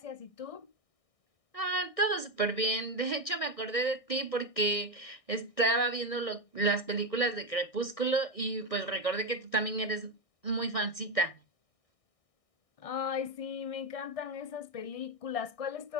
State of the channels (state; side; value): late; right; 1.6 ms